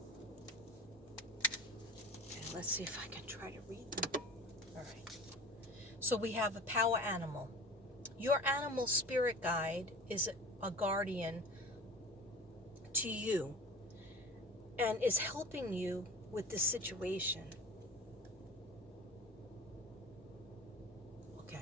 Let's see if I can try to read them. All right. So we have a power animal. Your animal spirit guide is a guardian to you and is helping you with this situation.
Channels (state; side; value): normal; both; correlation 0.38